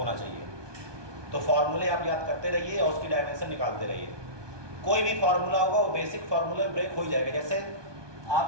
चाहिए। तो फॉर्मूले आप याद करते रहिए और उसकी डायमेंशन निकालते रहिए। कोई भी फार्मूला होगा वो बेसिक फार्मूला ब्रेक हो ही जाएगा। जैसे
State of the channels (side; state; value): left; late; 1.2 ms